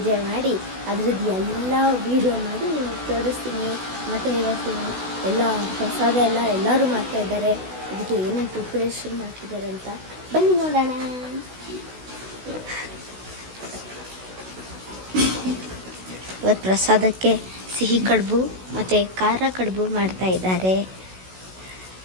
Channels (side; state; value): left; late; 16 ms